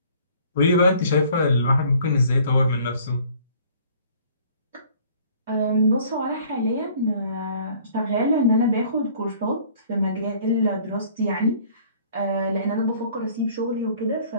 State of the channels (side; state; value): both; inverted; correlation -0.54